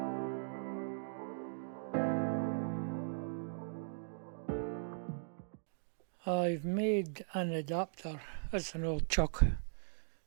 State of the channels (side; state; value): left; silent; digital silence